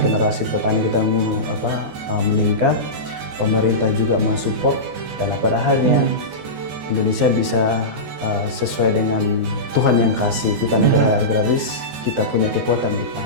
petani kita meningkat, pemerintah juga mensupport, dan pada akhirnya Indonesia bisa sesuai dengan Tuhan yang kasih kita negara agraris, kita punya kekuatan di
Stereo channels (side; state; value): left; late; 14 ms